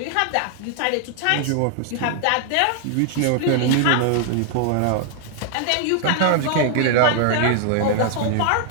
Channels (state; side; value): different; both; correlation 0.00